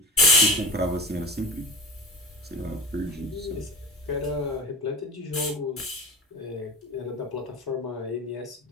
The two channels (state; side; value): normal; both; correlation 0.33